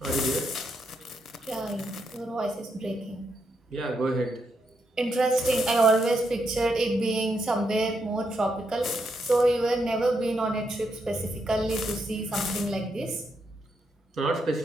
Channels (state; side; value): normal; both; correlation 0.80